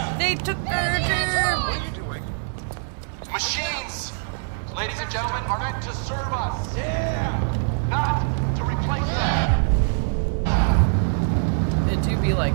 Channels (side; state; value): left; silent; digital silence